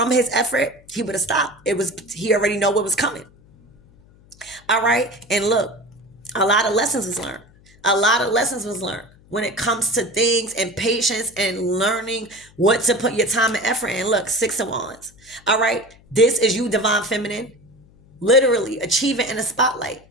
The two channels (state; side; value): noise; left; hum, 27 dB below the sound